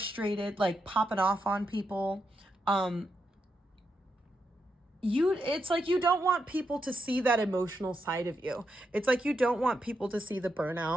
like popping off on people. It's like you don't want people to see that emotional side of you. It's like you don't want people to see the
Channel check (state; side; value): normal; both; correlation 0.83